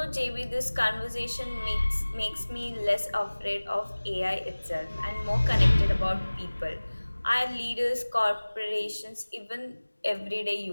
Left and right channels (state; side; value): inverted; both; correlation -1.00